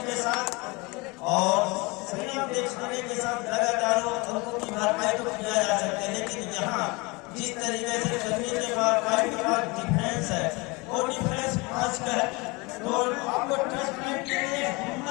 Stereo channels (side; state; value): right; quieter; 26.1 dB